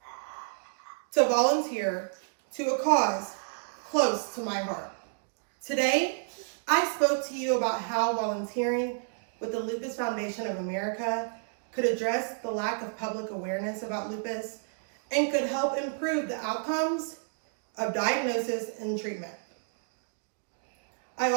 to volunteer to a cause close to my heart. Today, I spoke to you about how volunteering with the Lupus Foundation of America could address the lack of public awareness about lupus and could help improve the outcomes of diagnosis and treatment. I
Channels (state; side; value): silent; left; digital silence